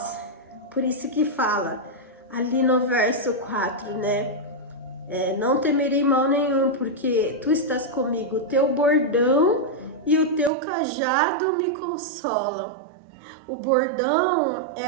Por isso que fala ali no verso 4, né? Não temerei mal nenhum, porque tu estás comigo, o teu bordão e o teu cajado me consolam. O bordão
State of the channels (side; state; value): left; drops out; at 10.5 s